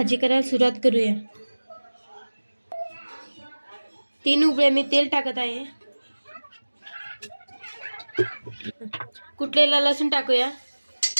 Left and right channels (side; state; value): both; inverted; correlation -1.00